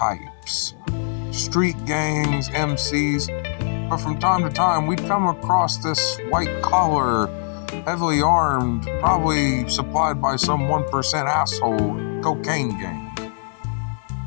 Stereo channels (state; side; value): silent; right; digital silence